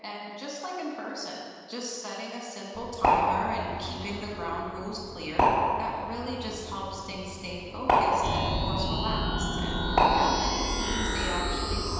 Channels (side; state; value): both; identical; correlation 1.00